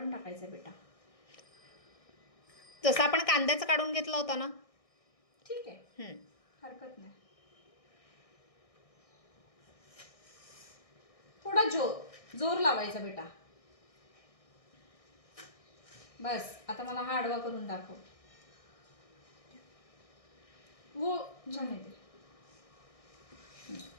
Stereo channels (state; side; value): late; right; 1.6 ms